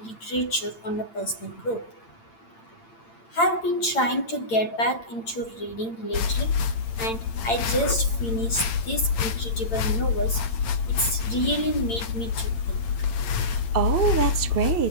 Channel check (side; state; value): right; late; 8.8 ms